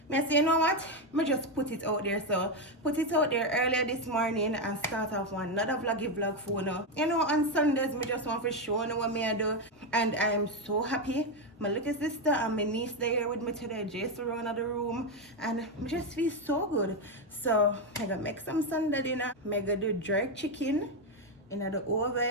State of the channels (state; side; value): normal; both; correlation 0.07